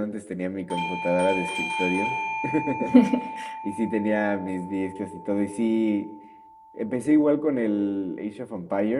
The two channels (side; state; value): both; identical; correlation 1.00